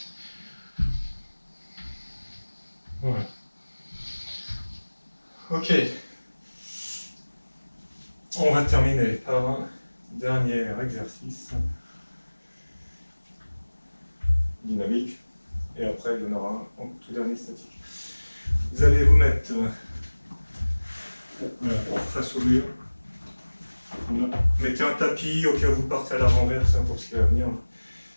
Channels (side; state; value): both; inverted; correlation -1.00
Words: Voilà. Ok. On va terminer par un dernier exercice dynamique. Et après, il y en aura un en tout dernier statique. Vous allez vous mettre voilà, face au mur. Voilà. Mettez un tapis au cas où vous partez à la renverse pour ce qui va venir.